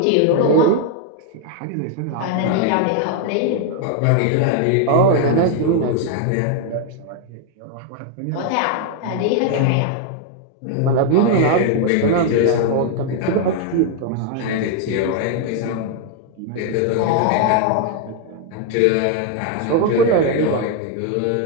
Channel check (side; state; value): both; different; correlation 0.00